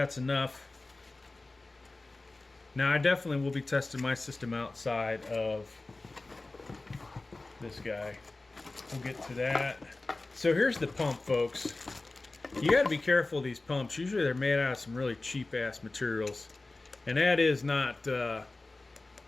enough. Now I definitely will be testing my system outside of this guy. We'll get to that. So here's the pump, folks. You got to be careful of these pumps. Usually they're made out of some really cheap ass materials, and that is not.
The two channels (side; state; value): right; quieter; 3.2 dB